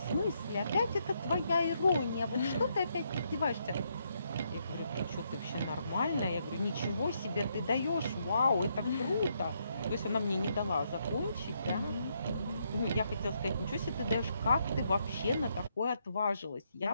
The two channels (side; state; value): both; inverted; correlation -0.76